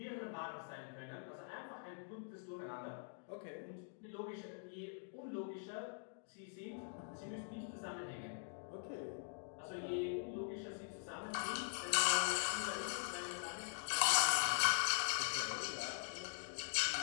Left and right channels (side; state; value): right; silent; digital silence